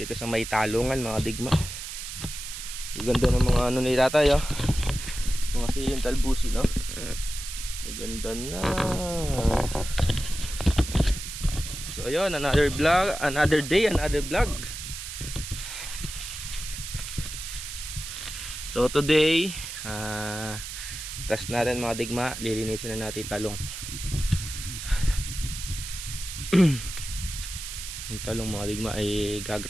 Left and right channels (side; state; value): right; noise; hiss, 8 dB below the sound